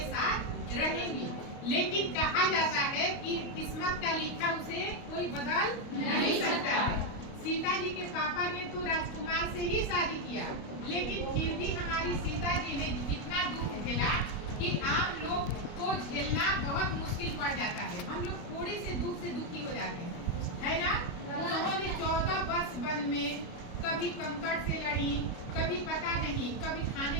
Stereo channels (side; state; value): right; late; 29 ms